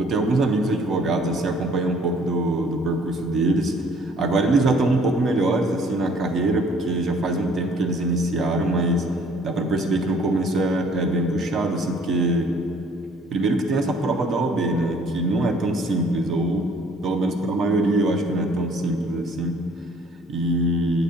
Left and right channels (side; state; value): both; normal; correlation 0.58